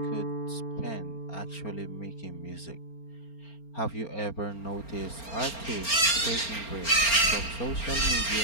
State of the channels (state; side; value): late; right; 4.4 ms